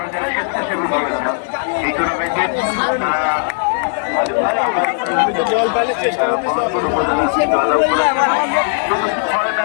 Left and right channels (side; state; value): right; silent; 68 dB below the other